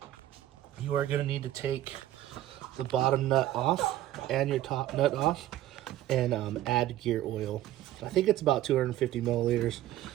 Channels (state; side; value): quieter; left; 13.8 dB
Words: You are going to need to take the bottom nut off and your top nut off and add gear oil. I think it's about 250 milliliters.